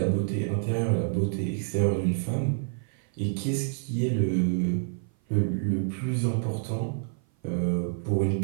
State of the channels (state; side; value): silent; left; 55 dB below the other